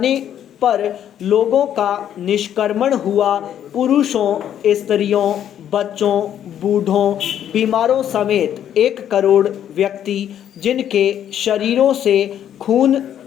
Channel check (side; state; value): right; quieter; 10.2 dB